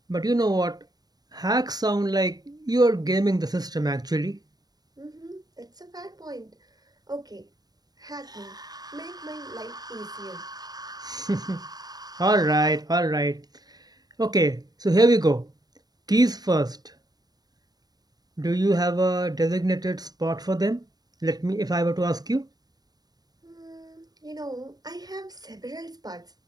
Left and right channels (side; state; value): left; late; 0.19 ms